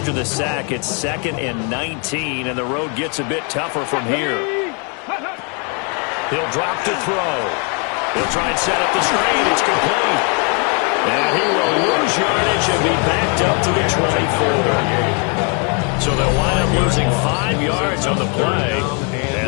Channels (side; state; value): right; quieter; 36.7 dB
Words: the sack, it's 2nd and 19, and the road gets a bit tougher from here. He'll drop to throw. He'll try and set up the screen. It's complete. And he will lose yardage and be backed up to the 24. So they'll wind up losing 5 yards on the play,